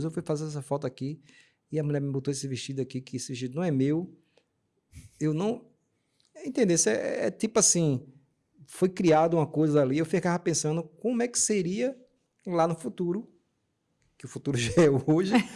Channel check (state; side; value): identical; both; correlation 1.00